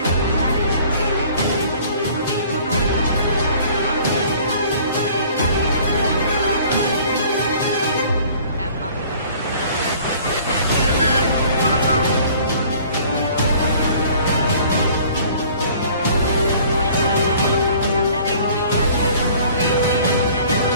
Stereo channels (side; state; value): both; inverted; correlation -0.52